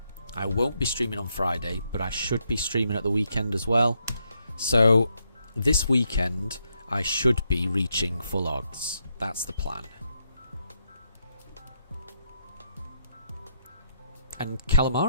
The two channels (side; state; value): both; inverted; correlation -0.77